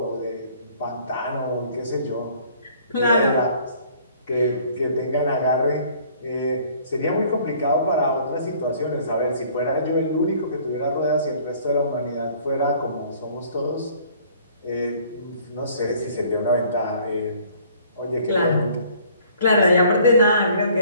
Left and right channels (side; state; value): both; inverted; correlation -0.56